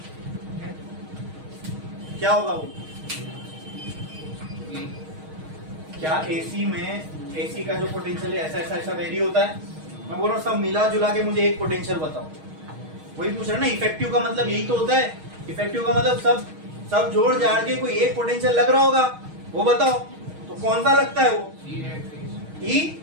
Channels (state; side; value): late; left; 6.4 ms